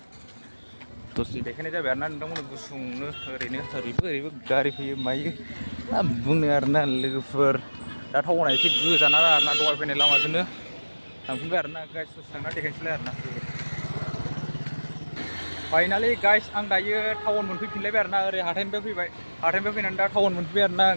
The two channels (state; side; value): inverted; both; correlation -1.00